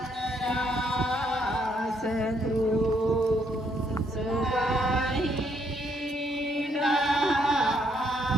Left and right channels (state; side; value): normal; both; correlation 0.72